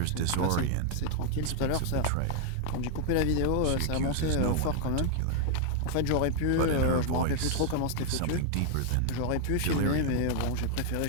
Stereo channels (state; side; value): different; both; correlation 0.00